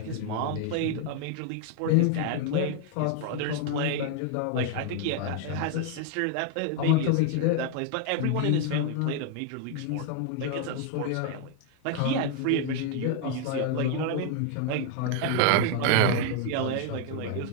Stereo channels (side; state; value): both; different; correlation 0.00